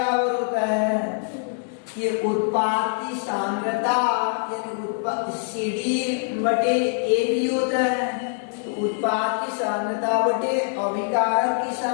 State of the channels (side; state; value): right; silent; 58 dB below the other